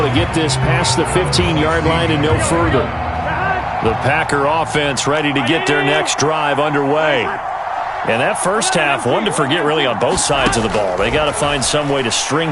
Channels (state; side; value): identical; both; correlation 1.00